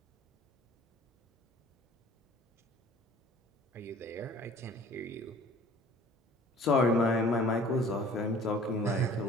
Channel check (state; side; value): normal; both; correlation 0.49